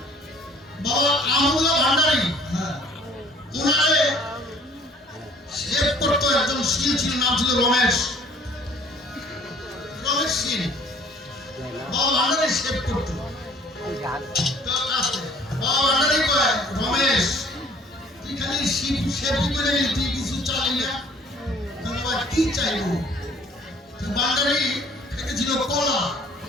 বাবা আমুল্লাহ ভান্ডারী, ওনারে শেভ করতো একজন শীল ছিল, নাম ছিল রমেশ শীল। বাবা ভান্ডারী শেভ করতো। বাবা ভান্ডারী কয়, রমেশ তুই খালি শেভই করে নিলি, তুই কিছু চালি না। বাবা কি চাইবো? ভান্ডারী খেতেছিল কলা,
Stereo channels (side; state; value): both; normal; correlation 0.55